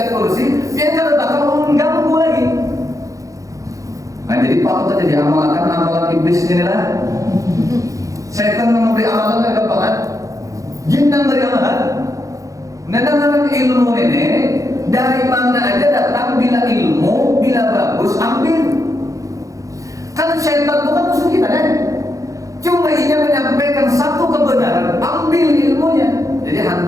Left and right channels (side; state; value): left; late; 0.16 ms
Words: kursi, dia kan bakal mengganggu lagi. Nah jadi patut aja diamalkan amalan iblis inilah. Setan memberi amalan yang gampang. Jin yang beri amalan. Nah, ilmu ini dari mana aja datang, bila ilmu, bila bagus ambil. Kan syaitan bukan musuh kita kan? Cuma ia menyampaikan satu kebenaran, ambil ilmunya. Jadi